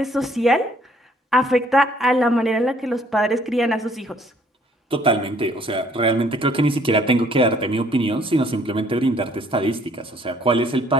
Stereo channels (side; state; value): both; normal; correlation 0.62